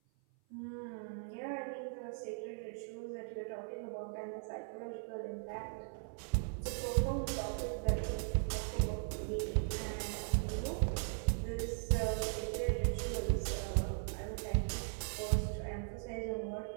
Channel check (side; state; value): left; silent; 52 dB below the other